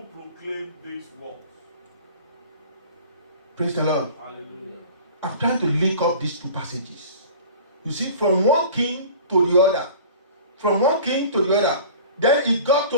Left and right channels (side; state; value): both; inverted; correlation -0.42